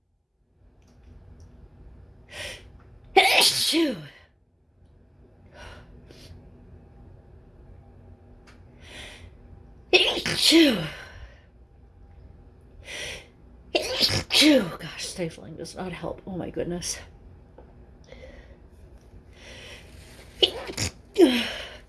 Issue. Issue. Issue. Gosh, stifling does not help. Oh my goodness.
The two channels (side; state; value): both; identical; correlation 1.00